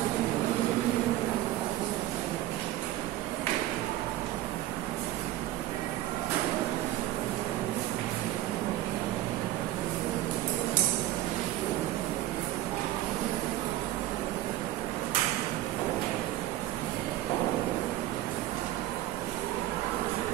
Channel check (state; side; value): quieter; left; 14.7 dB